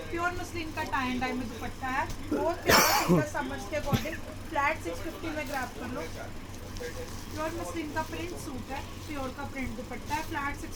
प्योर मसलिन का टाई एंड डाई में दुपट्टा है। बहुत प्यारा सूट है समर्स के अकॉर्डिंग। फ्लैट 650 में ग्रैब कर लो। प्योर मसलिन का प्रिंट सूट है, प्योर का प्रिंट दुपट्टा है। फ्लैट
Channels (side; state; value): both; identical; correlation 1.00